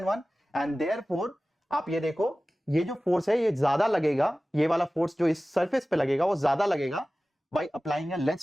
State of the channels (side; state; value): both; normal; correlation 0.97